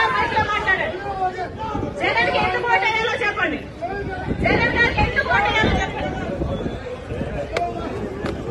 మైక్ లో మాట్లాడండి. జగన్ కి ఎందుకు ఓటేయాలో చెప్పండి. జగన్ గారికి ఎందుకు ఓటేయాలో చెప్పండి.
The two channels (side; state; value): both; identical; correlation 1.00